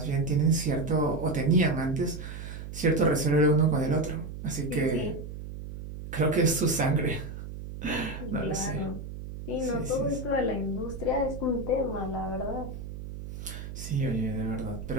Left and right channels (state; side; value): noise; right; hum, 9 dB below the sound